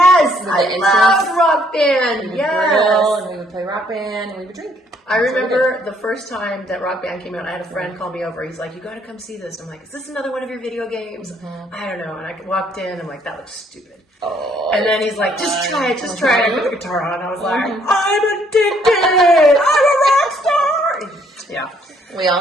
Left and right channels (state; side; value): normal; both; correlation 0.66